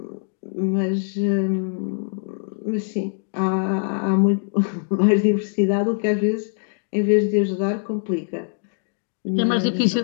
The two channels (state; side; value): silent; right; digital silence